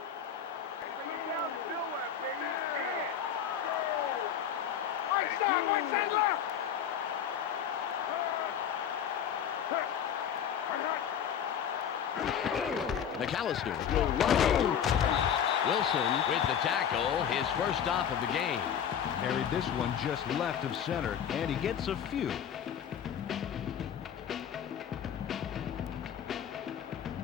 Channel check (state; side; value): quieter; right; 8.6 dB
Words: Bring it down to nowhere, baby. Yeah. Right side left. McAllister will run. Wilson with the tackle, his first stop of the game. Carried this one just left of center, and he gets a few.